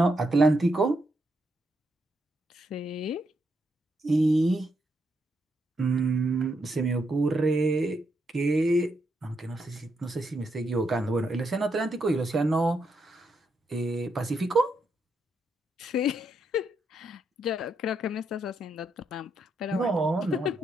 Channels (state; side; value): normal; both; correlation 0.80